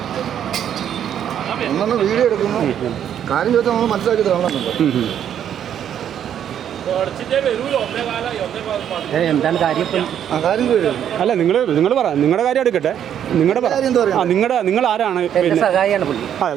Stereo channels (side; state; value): left; quieter; 9.6 dB